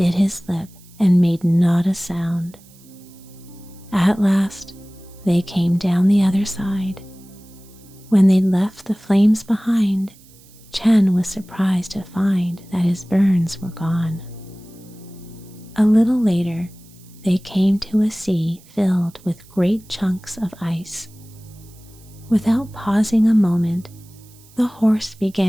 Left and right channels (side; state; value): right; noise; hiss, 26 dB below the sound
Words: his lip and made not a sound. At last, they came down the other side. When they left the flames behind, Chen was surprised to find that his burns were gone. A little later, they came to a sea filled with great chunks of ice. Without pausing a moment, the horse